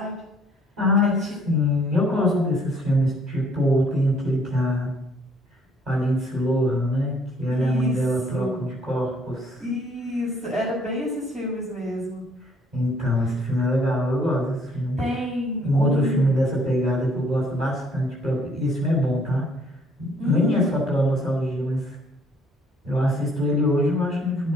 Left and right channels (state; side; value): normal; both; correlation 0.62